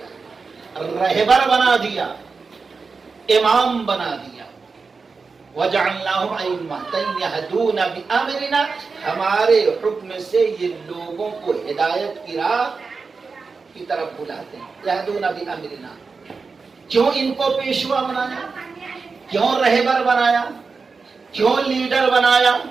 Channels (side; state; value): left; quieter; 4.6 dB